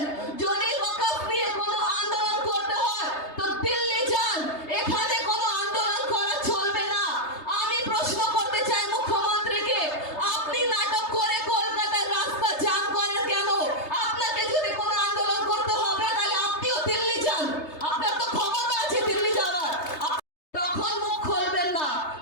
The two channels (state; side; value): late; right; 3.3 ms